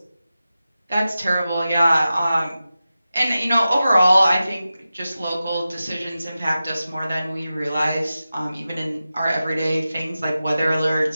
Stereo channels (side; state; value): both; inverted; correlation -0.93